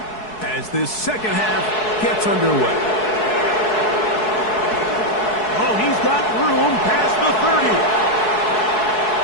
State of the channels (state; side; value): late; right; 4.7 ms